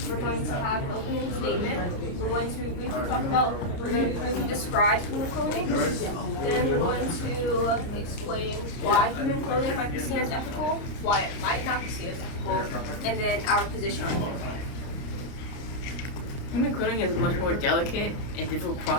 we're going to have an opening statement. We're going to briefly talk about, we're going to briefly describe human cloning. Then we're going to explain why human cloning might be seen as ethical, why it might not be seen as ethical, and then our position on human cloning. Human cloning is a much more delicate and difficult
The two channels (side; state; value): right; late; 29 ms